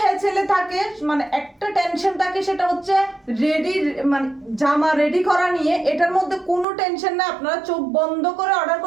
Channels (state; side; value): drops out; left; at 6.7 s